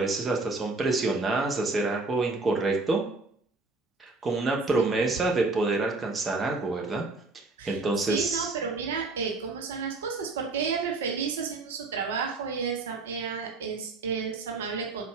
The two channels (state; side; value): quieter; left; 3.5 dB